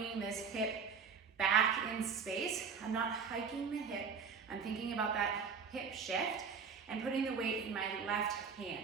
this hip back in space. I'm not hiking the hip, I'm thinking about that hip shift and putting the weight in my left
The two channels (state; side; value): quieter; left; 5.9 dB